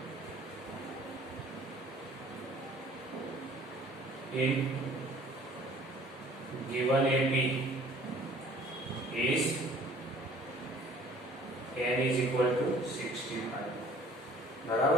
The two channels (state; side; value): normal; both; correlation 0.52